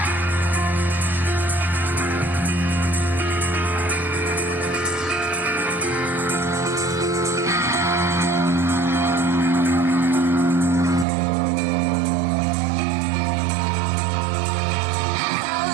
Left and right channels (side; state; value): left; drops out; at 11.1 s